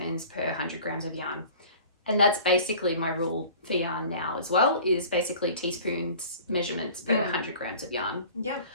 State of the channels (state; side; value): inverted; both; correlation -0.45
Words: per 100 grams of yarn. And that's basically my rule for yarn now as well, is basically teaspoons measurements per 100 grams of yarn. Yeah.